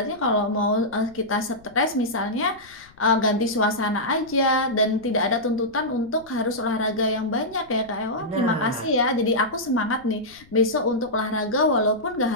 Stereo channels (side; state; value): left; noise; rumble, 27 dB below the sound